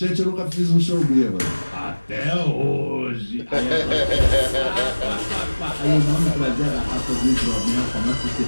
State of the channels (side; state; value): both; inverted; correlation -1.00